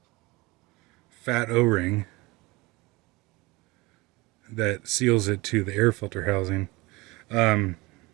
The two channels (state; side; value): quieter; left; 23.0 dB